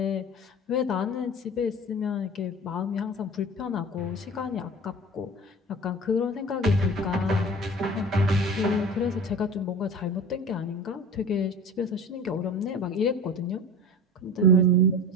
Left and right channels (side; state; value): both; normal; correlation 0.36